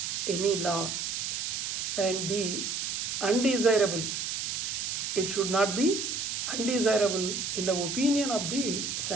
any law, and be undesirable. It should not be undesirable in the opinion of the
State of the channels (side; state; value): right; noise; hiss, 2 dB below the sound